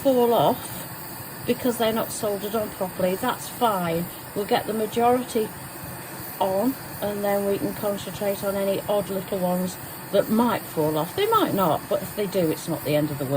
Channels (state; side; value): identical; both; correlation 1.00